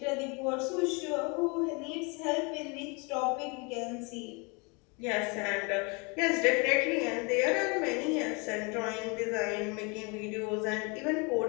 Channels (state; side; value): quieter; right; 30.9 dB